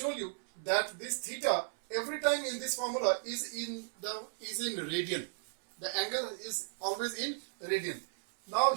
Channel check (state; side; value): silent; left; 55 dB below the other